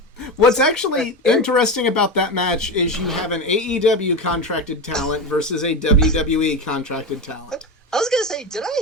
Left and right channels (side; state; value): both; normal; correlation 0.19